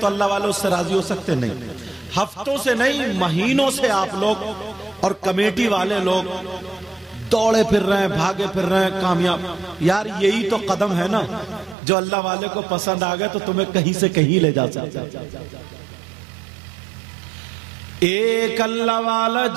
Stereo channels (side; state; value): left; drops out; at 11.8 s